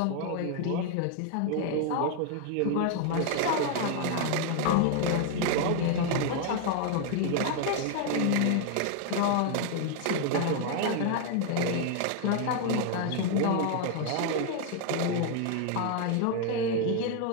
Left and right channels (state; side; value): different; both; correlation 0.00